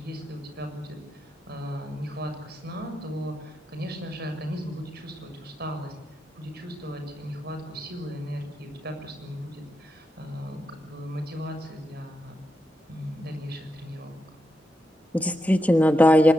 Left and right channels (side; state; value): both; normal; correlation 0.86